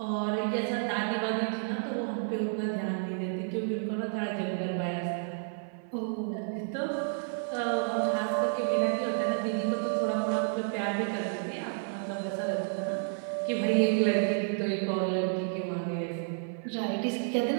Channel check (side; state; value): left; silent; 55 dB below the other